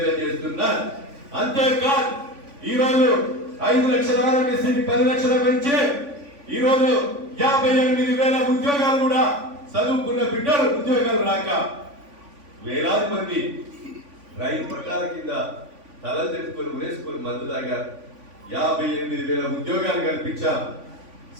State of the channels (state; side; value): late; left; 3.5 ms